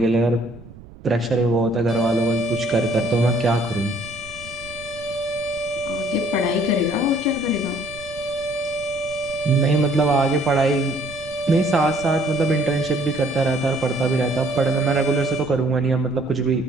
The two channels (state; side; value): noise; right; rumble, 18 dB below the sound